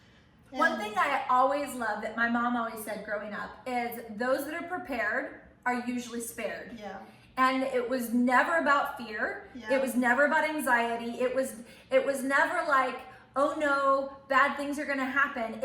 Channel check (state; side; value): identical; both; correlation 1.00